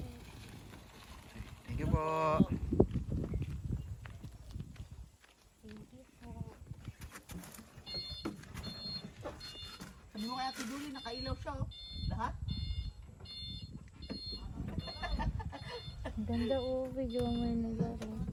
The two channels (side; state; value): both; identical; correlation 1.00